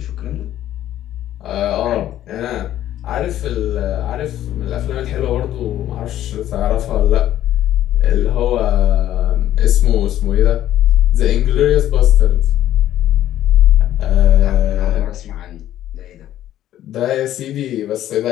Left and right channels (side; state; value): right; quieter; 12.5 dB